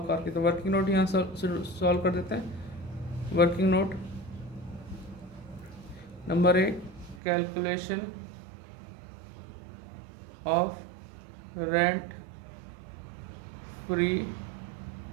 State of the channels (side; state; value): left; drops out; at 7.2 s